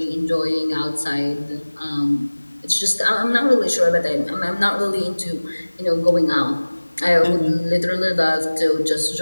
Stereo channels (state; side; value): inverted; both; correlation -1.00